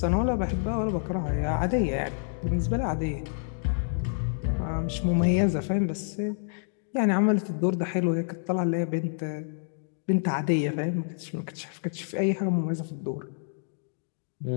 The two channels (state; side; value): silent; right; digital silence